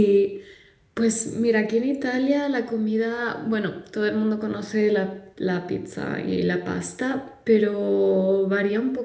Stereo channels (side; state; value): both; identical; correlation 1.00